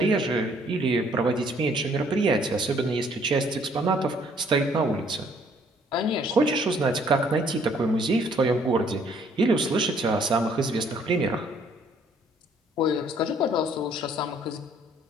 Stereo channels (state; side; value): normal; both; correlation 0.62